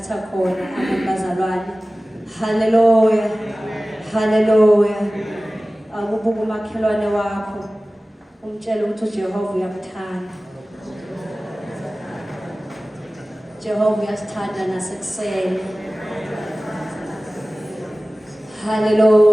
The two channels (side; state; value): both; normal; correlation 0.97